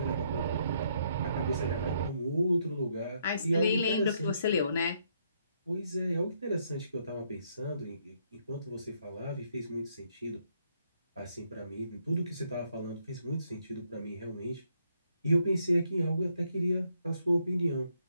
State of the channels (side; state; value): both; inverted; correlation -0.73